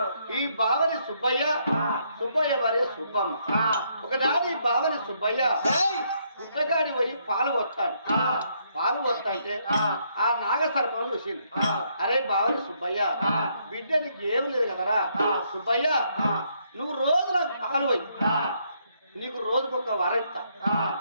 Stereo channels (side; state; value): both; inverted; correlation -0.73